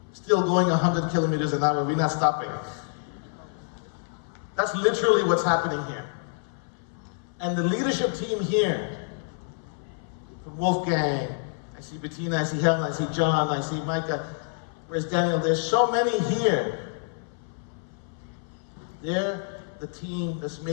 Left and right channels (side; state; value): right; silent; 59 dB below the other